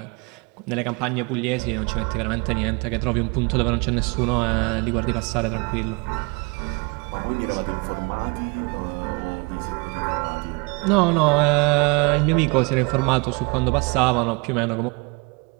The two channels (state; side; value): quieter; left; 29.5 dB